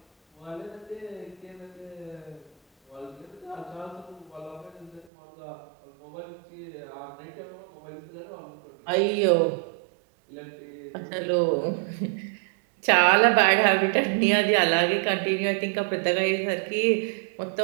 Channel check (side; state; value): left; drops out; at 5.1 s